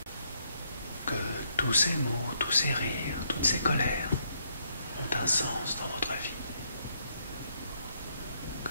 que tous ces mots, tous ces rires, toutes ces colères ont un sens dans votre vie. Que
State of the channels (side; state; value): both; inverted; correlation -0.74